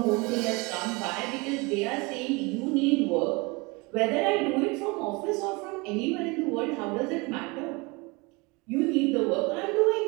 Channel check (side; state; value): left; quieter; 26.6 dB